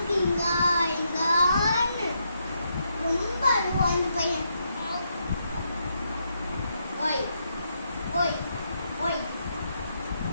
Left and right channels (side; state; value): both; inverted; correlation -0.79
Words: இங்கான்னு ரொம்ப அழுவான் இந்த பையன். ஓய் ஓய் ஓய்